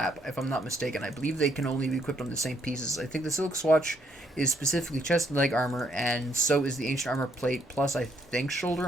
if I'm not mistaken. I believe they can only be equipped on the same pieces. I think the silk swatch is specifically chest and leg armor, and so is the ancient armor plate, plus I think shoulder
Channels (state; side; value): normal; both; correlation 0.72